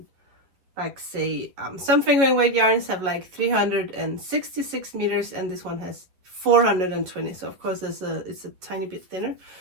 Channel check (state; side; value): late; left; 11 ms